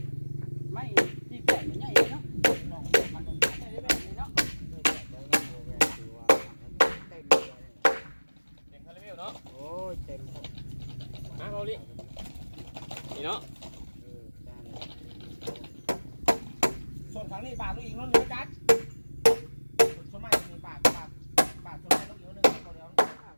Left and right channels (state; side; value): inverted; both; correlation -1.00